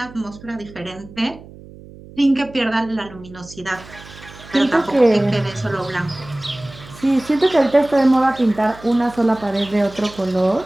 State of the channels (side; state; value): right; noise; hum, 19 dB below the sound